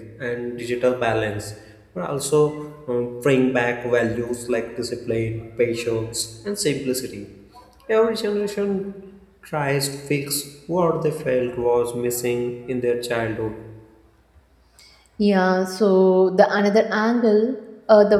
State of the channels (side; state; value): both; identical; correlation 1.00